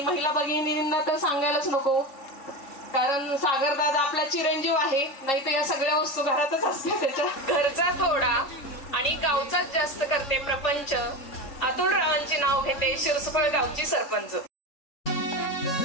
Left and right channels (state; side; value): late; right; 3.7 ms